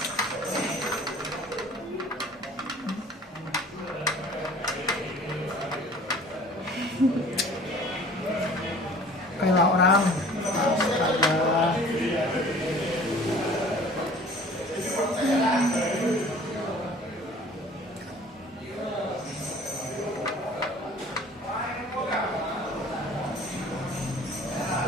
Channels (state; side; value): normal; both; correlation 0.48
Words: Kayak orang. Astaga.